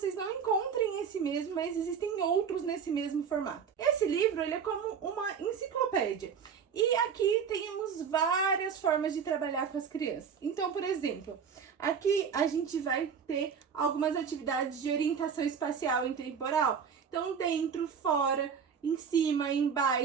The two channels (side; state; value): left; quieter; 6.8 dB